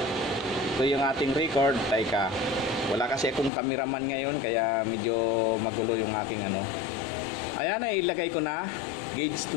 Ito yung ating record. Teka, wala kasi akong cameraman ngayon kaya medyo magulo yung ating ano. Ayan, ilagay ko na. Gauge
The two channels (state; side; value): drops out; right; at 3.5 s